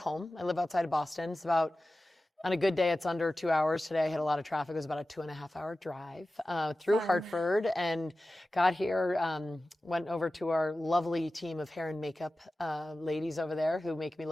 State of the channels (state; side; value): normal; both; correlation 0.95